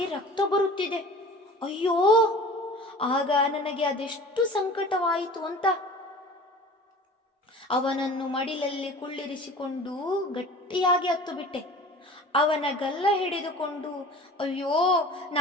ರಕ್ತ ಬರುತ್ತಿದೆ. ಅಯ್ಯೋ, ಆಗ ನನಗೆ ಅದೆಷ್ಟು ಸಂಕಟವಾಯಿತು ಅಂತ. ಅವನನ್ನು ಮಡಿಲಲ್ಲಿ ಕುಳ್ಳಿರಿಸಿಕೊಂಡು ಗಟ್ಟಿಯಾಗಿ ಹತ್ತು ಬಿಟ್ಟೆ. ಅವನ ಗಲ್ಲ ಹಿಡಿದುಕೊಂಡು ಅಯ್ಯೋ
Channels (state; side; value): normal; both; correlation 0.42